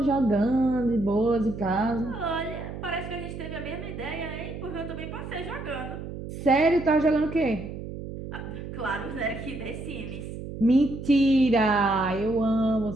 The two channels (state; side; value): noise; right; hum, 9 dB below the sound